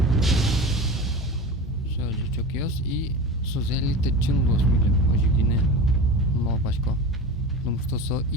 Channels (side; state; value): both; normal; correlation 0.31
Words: Все, жичок ёс и созели тачын лос милем. Ожигине. Мал пачко. Потому что со